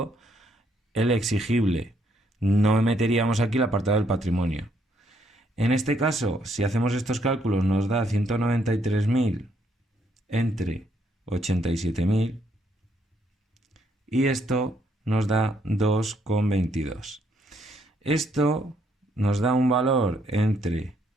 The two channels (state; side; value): normal; both; correlation 0.72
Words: el exigible. No meteríamos aquí el apartado del patrimonio. En este caso, si hacemos estos cálculos, nos da 193.000 entre 87.000 y esto nos da 2,22. Esto nos da un valor entre